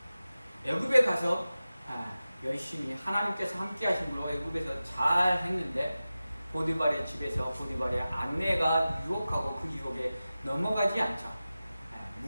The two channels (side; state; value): both; inverted; correlation -0.95